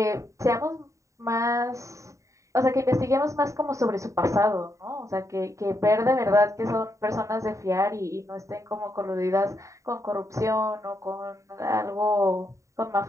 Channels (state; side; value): late; left; 0.15 ms